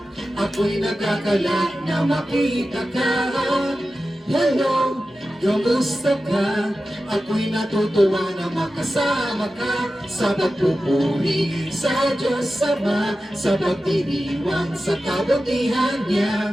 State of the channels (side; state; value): both; normal; correlation 0.93